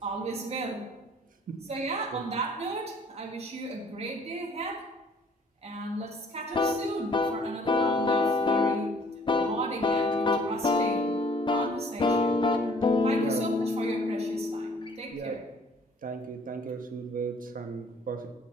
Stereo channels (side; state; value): both; normal; correlation 0.57